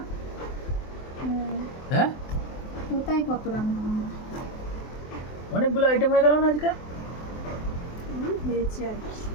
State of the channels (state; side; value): late; right; 23 ms